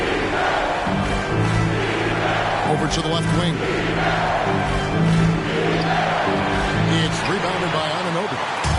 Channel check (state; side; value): identical; both; correlation 1.00